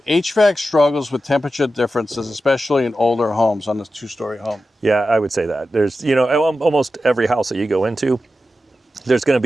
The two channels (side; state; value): both; normal; correlation 0.92